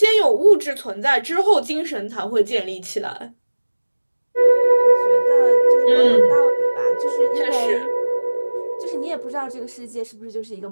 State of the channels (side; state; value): both; inverted; correlation -1.00